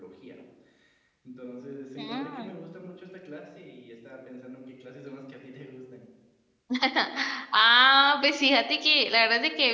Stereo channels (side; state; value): both; identical; correlation 1.00